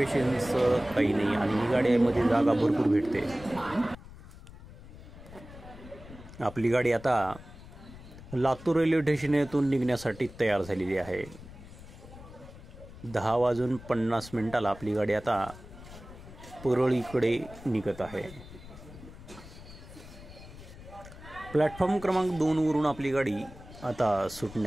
काही नाही आणि ही गाडीमध्ये जागा भरपूर भेटते. आपली गाडी आता लातूर रेल्वे स्टेशन येथून निघण्यासाठी तयार झालेली आहे. 10:50 आपली गाडी आता परळीकडे निघत आहे. प्लॅटफॉर्म क्रमांक 2 वरून आपली गाडी आता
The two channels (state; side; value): noise; left; rumble, 17 dB below the sound